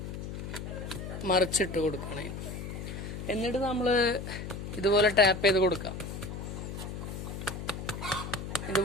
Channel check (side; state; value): left; noise; hum, 7 dB below the sound